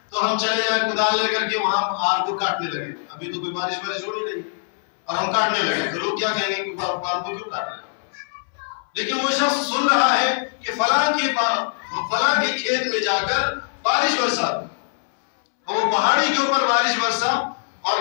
تو ہم چلے جائیں کدال لے کر کے وہاں آگ کو کاٹنے لگے. ابھی تو کوئی بارش ہو نہیں رہی اور ہم کاٹنے لگے تو لوگ کیا کہیں گے کہ باندھ کو کیوں کاٹ رہے ہیں. لیکن وہ شخص سن رہا ہے کہ فلاں کے کھیت میں جا کر بارش برسا. وہ پہاڑی کے اوپر بارش برسا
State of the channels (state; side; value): silent; right; 64 dB below the other